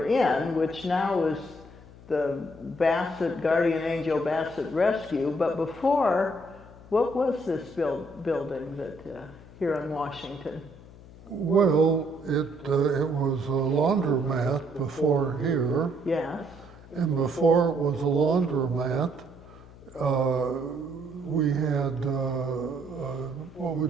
in, which now is the Bassett, Guardian Angel Bassett Rescue, but before, what was this building that here in Washington? Well, it was a laundromat before here. Yes. And before it was a laundromat, we had, what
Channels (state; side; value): noise; left; hum, 20 dB below the sound